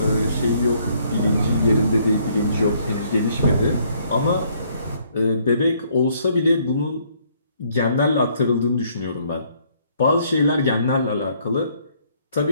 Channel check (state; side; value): inverted; both; correlation -0.66